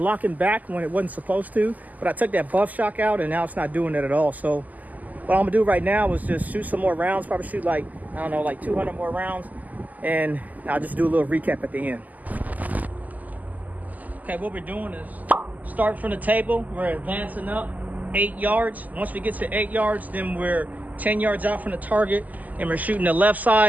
back when it wasn't supposed to, but I took that buff shock out, and now it's not doing that at all. So what I'm gonna do right now is just shoot some more rounds, probably shoot like, I don't know, like 200 more rounds, and I'll just do a little recap at the end. Okay, what we're doing is start from the table. We're advancing up 8 yards. Once we get to 8 yards, then we're 10 yards out from the target, and we're shooting the left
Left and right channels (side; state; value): left; late; 0.080 ms